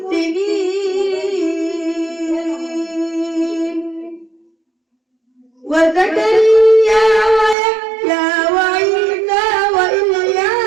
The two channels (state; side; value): drops out; left; at 7.6 s